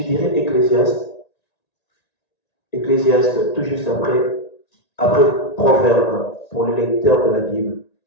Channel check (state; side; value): late; right; 1.9 ms